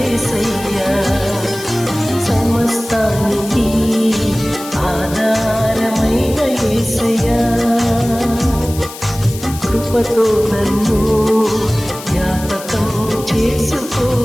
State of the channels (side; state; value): left; noise; hiss, 14 dB below the sound